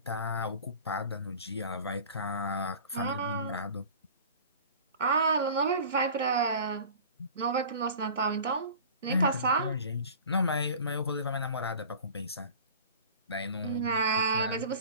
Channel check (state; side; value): inverted; both; correlation -0.41